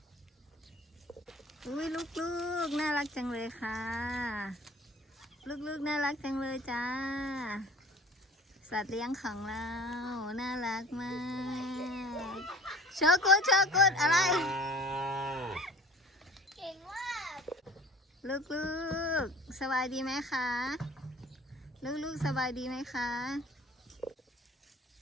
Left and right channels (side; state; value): both; normal; correlation 0.46